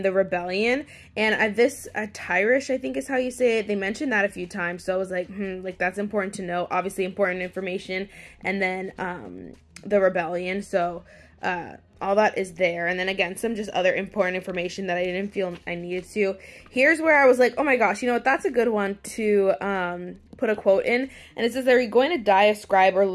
the Rebellion. And this, Tyrish, I think is how you say it. They mentioned that a few times. So I was like, like, that's important to know. Obviously, important information. And then the Rebellion. So all that is there. And then, again, some just other important information that I didn't feel I needed to. Here's where I was like, oh, my gosh, you know what? That's a good one to put a quote in. And it says, are you going to die a scribe or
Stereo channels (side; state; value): both; identical; correlation 1.00